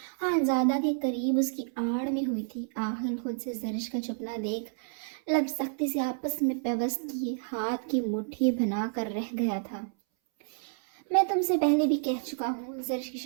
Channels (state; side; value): silent; left; 58 dB below the other